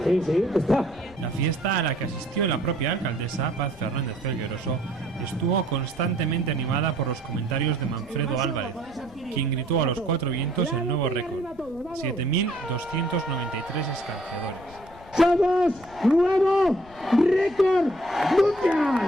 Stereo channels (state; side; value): noise; left; rumble, 21 dB below the sound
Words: Sí, está. La fiesta, a la que asistió la propia alcaldesa, Paz Fernández Felgueroso, estuvo constantemente animada por los comentarios de Manfredo Álvarez, quien gritó a los cuatro vientos el nuevo récord: 7.293 escanciadores. ¡Somos nuevo récord mundial!